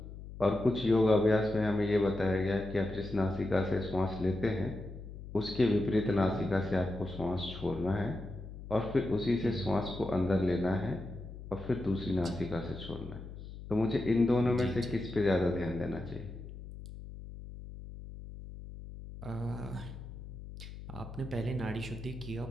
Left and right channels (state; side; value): noise; left; hum, 12 dB below the sound